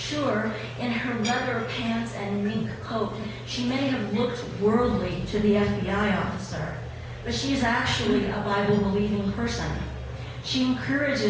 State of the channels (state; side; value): identical; both; correlation 1.00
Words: in her leather pants and mink coat, she may have looked worldly to the FBI officer, but she's actually a Bible-believing person. She